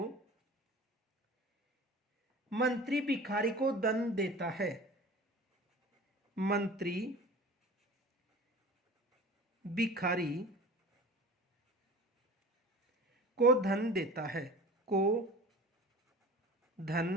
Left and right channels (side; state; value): both; normal; correlation 0.39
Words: मंत्री भिखारी को धन देता है, मंत्री भिखारी को धन देता है, को